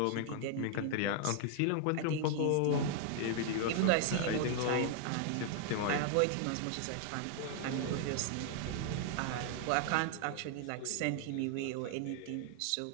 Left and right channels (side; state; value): both; different; correlation 0.00